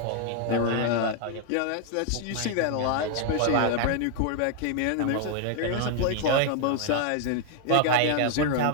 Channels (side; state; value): both; different; correlation 0.00